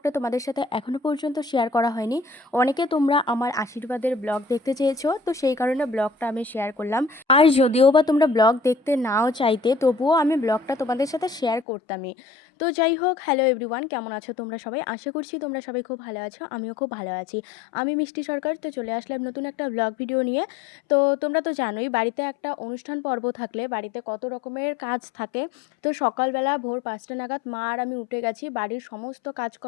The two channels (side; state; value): right; drops out; at 11.7 s